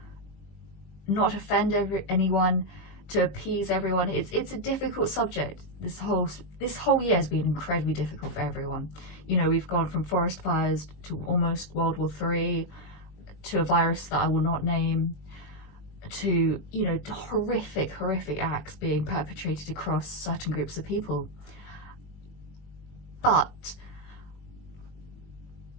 not offend anyone, to appease everyone. It's a difficult subject. This whole year has been incredibly difficult for everyone. You know, we've gone from forest fires to almost World War III, to a virus that I will not name, to, you know, horrific acts being perpetrated across certain groups of people. But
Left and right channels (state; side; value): late; right; 20 ms